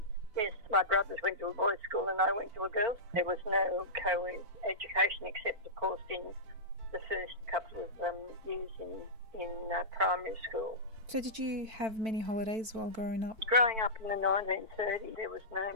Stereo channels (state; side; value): late; left; 4.5 ms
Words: Yes, my brothers went to a boys' school and I went to a girls'. There was no co-ed education except, of course, in the first couple of years in primary school. So did you have many holidays while growing up? Growing up in the 1930s, there was no